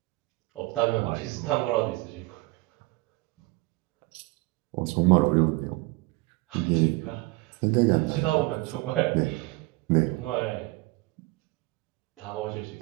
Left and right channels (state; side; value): quieter; left; 23.2 dB